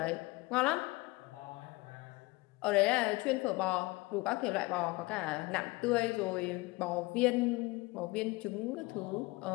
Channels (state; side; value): quieter; right; 22.7 dB